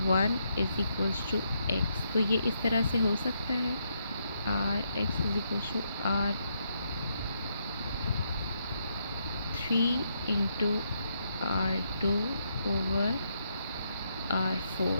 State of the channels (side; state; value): both; inverted; correlation -0.78